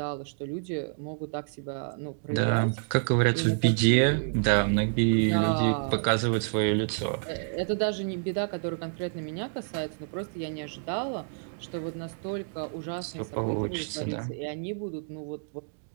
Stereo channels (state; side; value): silent; left; digital silence